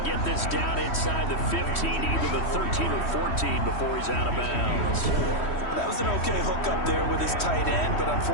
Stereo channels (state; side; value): late; right; 3.1 ms